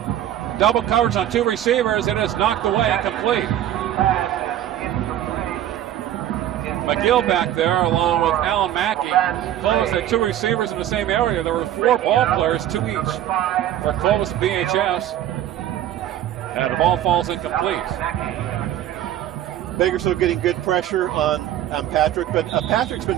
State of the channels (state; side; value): quieter; left; 11.8 dB